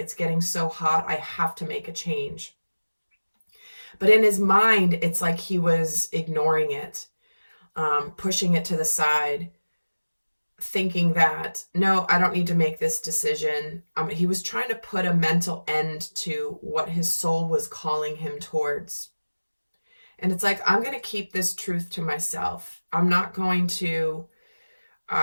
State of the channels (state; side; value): inverted; both; correlation -1.00